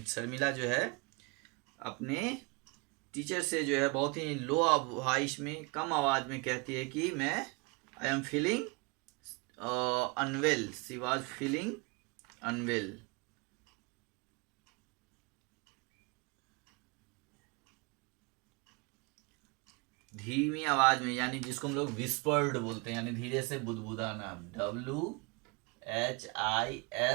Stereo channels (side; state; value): left; quieter; 29.6 dB